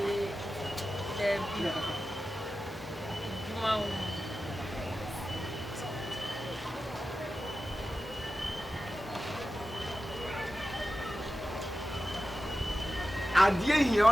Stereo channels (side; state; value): both; normal; correlation 0.93